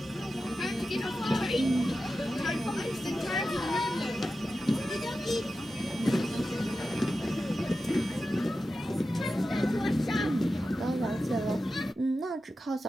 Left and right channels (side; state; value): both; normal; correlation 0.92